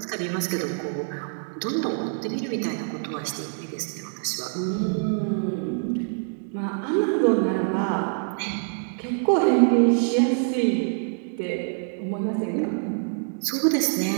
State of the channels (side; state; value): left; silent; 61 dB below the other